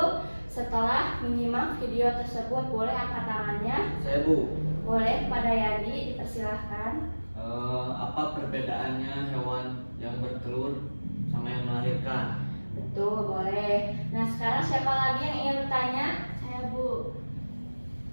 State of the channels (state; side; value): inverted; both; correlation -1.00